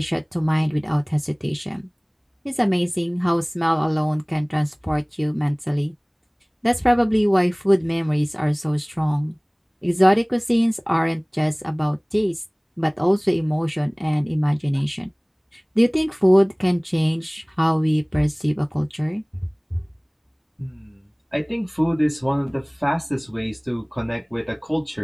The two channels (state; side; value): identical; both; correlation 1.00